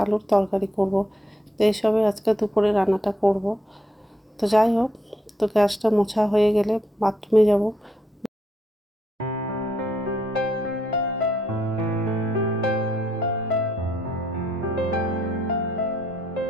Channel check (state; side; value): normal; both; correlation 0.75